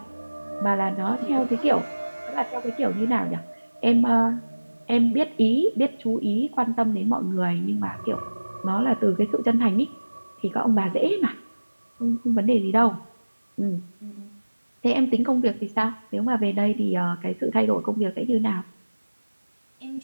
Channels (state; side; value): inverted; both; correlation -1.00